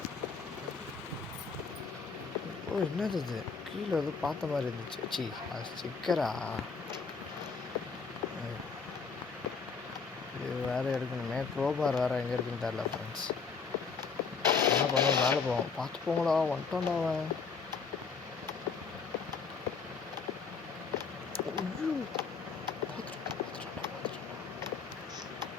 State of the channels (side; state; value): right; quieter; 5.3 dB